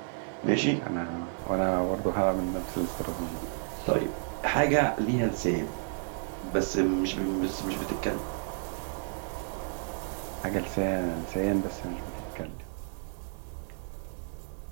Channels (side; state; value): left; silent; 57 dB below the other